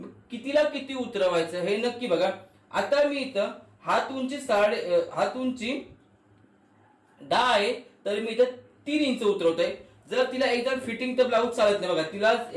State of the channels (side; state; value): both; identical; correlation 1.00